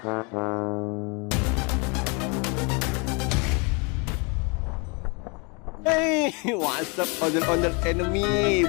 Hey, what's up ondel-ondel enemy?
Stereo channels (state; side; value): quieter; right; 32.2 dB